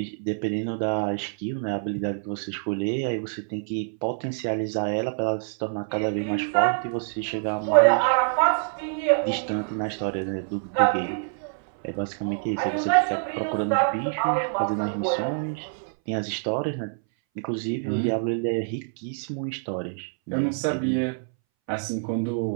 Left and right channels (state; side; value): silent; left; 61 dB below the other